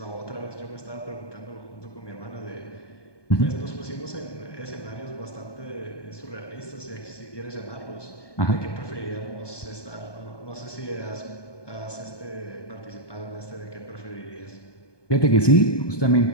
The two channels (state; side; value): late; right; 1.2 ms